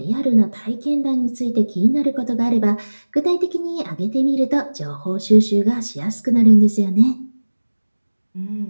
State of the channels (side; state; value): both; inverted; correlation -1.00